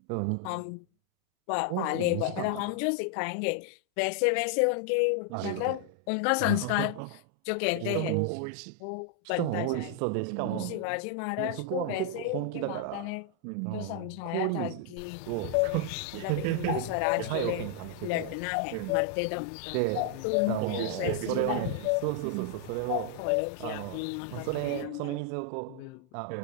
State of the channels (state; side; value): different; both; correlation 0.00